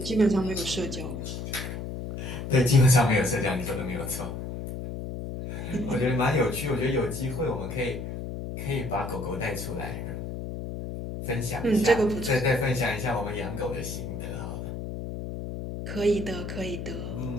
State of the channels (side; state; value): left; noise; hum, 6 dB below the sound